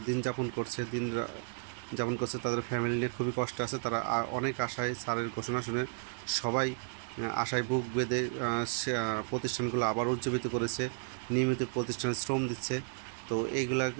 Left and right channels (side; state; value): left; silent; digital silence